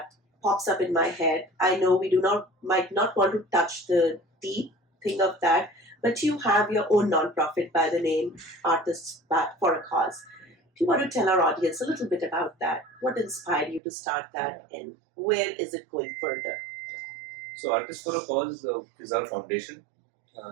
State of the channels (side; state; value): left; drops out; at 13.8 s